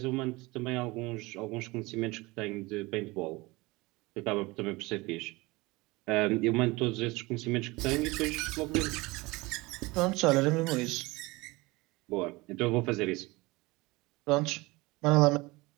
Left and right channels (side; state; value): left; quieter; 22.7 dB